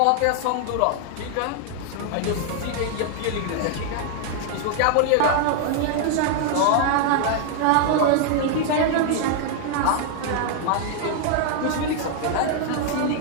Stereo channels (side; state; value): both; different; correlation 0.00